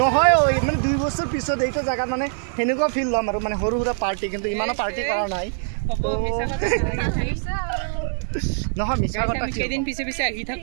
নহয় মানে 2 বছৰ পিছত এইটো জায়গা মানে হেনেকুৱা ফিল লম আৰু মানে সৰু সৰু পাৰ্টি কিন্তু ইমানো পাৰ্টি কৰা নাই তো মিছা কথা নালাগে নহয় মিছা কথা কেদিন পিছে আহি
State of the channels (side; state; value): left; silent; 57 dB below the other